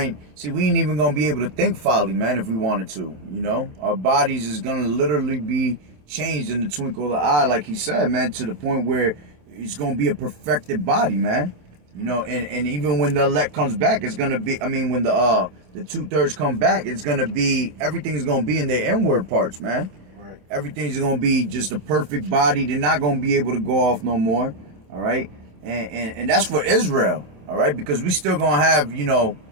See, we ain't even gonna be able to think folly, man, if we wanted to. You know, our bodies is gonna literally be changed in the twinkle of the eye, like he said, man, to the point where it's gonna be a perfected body, man. You know, and even when the elect comes back, it's gonna be. I mean, when the 2/3 come back, it's gonna be, everything is gonna be in their inward parts, man. right. Everything's gonna be just a perfect body. They're not gonna be able to go off no more. All right, and that's for Israel. All right, because we still gonna have, you know,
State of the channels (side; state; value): left; late; 27 ms